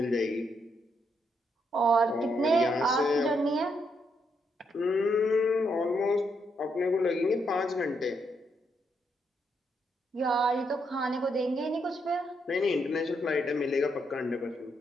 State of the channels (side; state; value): both; normal; correlation 0.78